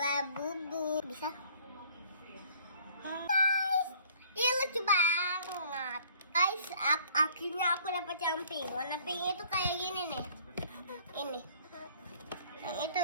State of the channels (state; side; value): inverted; both; correlation -0.55